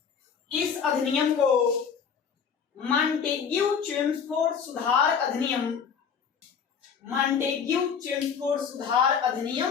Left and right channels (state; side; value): quieter; right; 6.8 dB